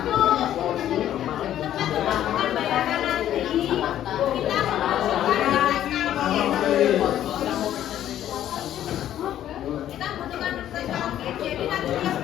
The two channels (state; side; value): quieter; right; 11.6 dB